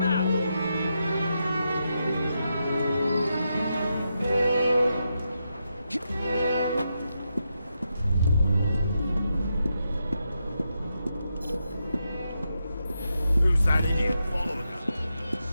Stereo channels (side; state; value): both; inverted; correlation -0.84